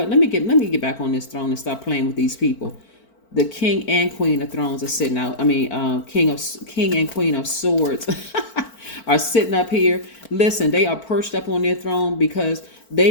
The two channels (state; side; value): late; right; 4.4 ms